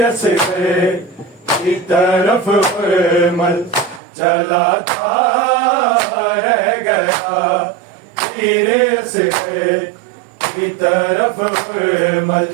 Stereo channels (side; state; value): left; drops out; at 4.0 s